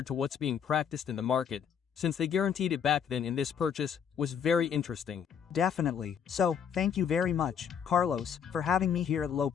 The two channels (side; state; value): right; quieter; 7.7 dB